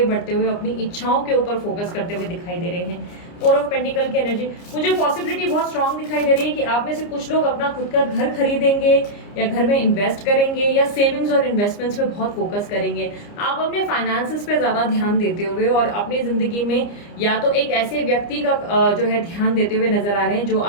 बढ़ते हुए, अपनी इच्छाओं के ऊपर फोकस करते हुए दिखाई दे रहे हैं। 4 ऑफ पेंटिकल की एनर्जी, मुझे पॉसिबिलिटी बहुत स्ट्रांग दिखाई दे रही है कि आप में से कुछ लोग अपना खुद का घर खरीदेंगे, या घर में इन्वेस्ट करेंगे, या सेविंग्स और इन्वेस्टमेंट्स पे बहुत फोकस करेंगे। आप अपने फाइनेंसेस पे ज्यादा ध्यान देते हुए और अपनी जिंदगी में या तो एक ऐसे व्यक्ति का जो है ध्यान देते हुए नजर आ रहे हैं जो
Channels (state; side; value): late; right; 29 ms